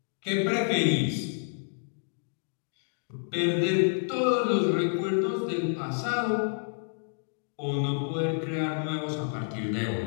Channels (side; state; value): right; silent; digital silence